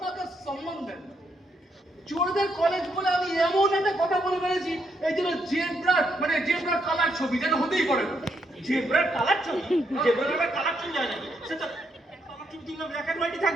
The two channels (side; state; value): both; normal; correlation 0.77